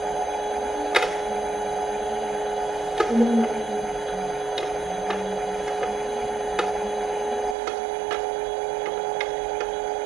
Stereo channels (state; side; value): drops out; left; at 7.6 s